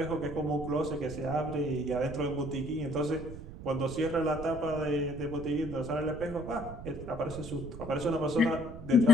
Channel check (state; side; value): noise; right; rumble, 12 dB below the sound